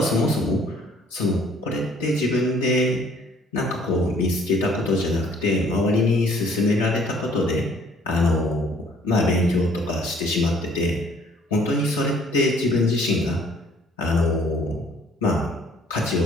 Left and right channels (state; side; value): normal; both; correlation 0.59